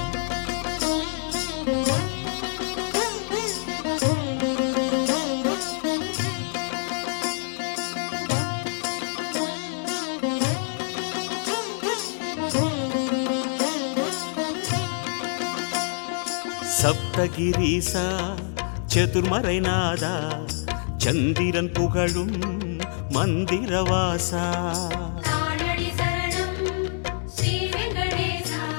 சப்தகிரீசா சதுர்மறைநாதா சந்திரன் புகழும் மந்திரவாசா தானடி சரணம் ஸ்ரீ வெங்கடேசா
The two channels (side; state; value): right; silent; digital silence